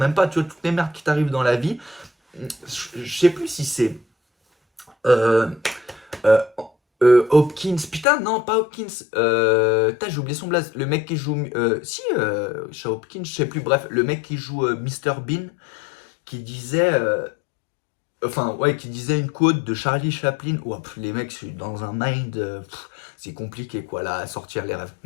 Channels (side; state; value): right; drops out; at 8.1 s